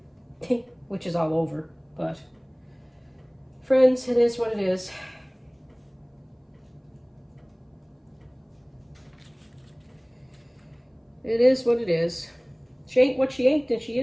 Which is all over, but friends, it is what it is. It is what it is. She ain't what she ain't, and she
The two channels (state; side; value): identical; both; correlation 1.00